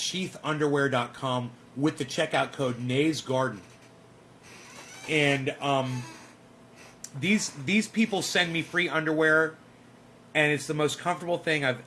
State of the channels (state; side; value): identical; both; correlation 1.00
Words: with the checkout code NADESGARDEN. And these people send me free underwear, and it's the most comfortable thing I've